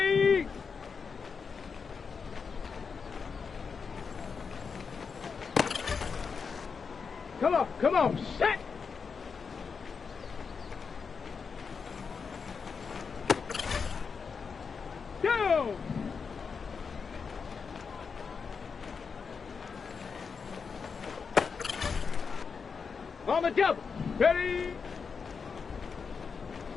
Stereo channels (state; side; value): quieter; right; 5.6 dB